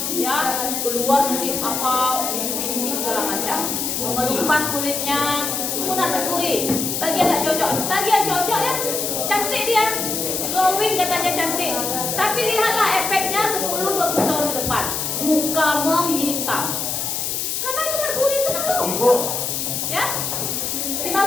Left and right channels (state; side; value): noise; left; hiss, 1 dB below the sound